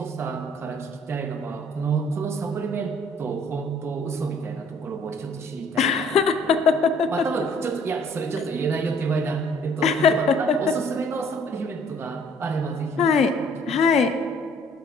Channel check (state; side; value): normal; both; correlation 0.58